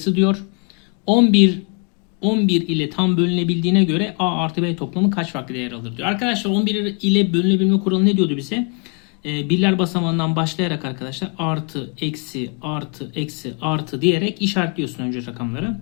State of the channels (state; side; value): quieter; right; 37.6 dB